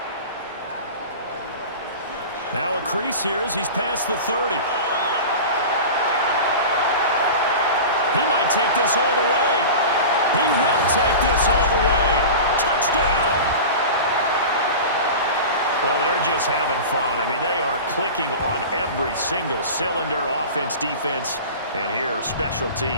Now a crease here as he's past the 30. He might take this all the way. He will take this all the way. Touchdown. Well, they're just having fun. I mean, they are clicking on every single cylinder, offense, defense, and here, special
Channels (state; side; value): inverted; both; correlation -0.32